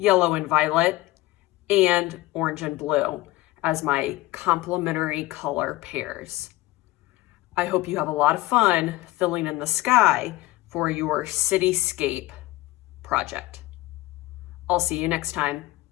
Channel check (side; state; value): right; quieter; 18.5 dB